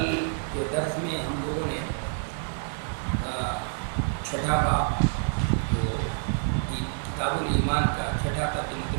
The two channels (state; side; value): silent; left; digital silence